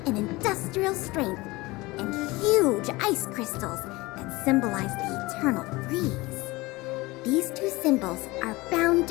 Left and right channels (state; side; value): quieter; right; 21.8 dB